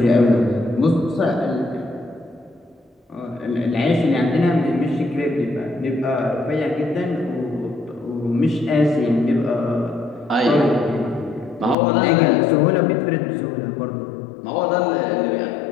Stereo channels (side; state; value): right; drops out; at 11.8 s